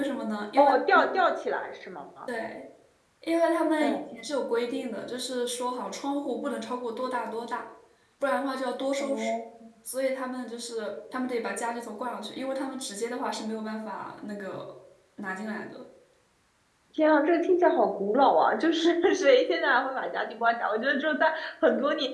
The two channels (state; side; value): identical; both; correlation 1.00